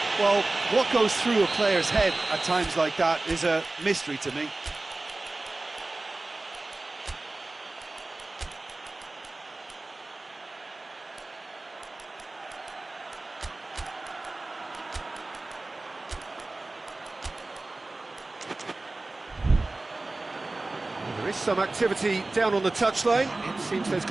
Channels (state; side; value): quieter; left; 3.1 dB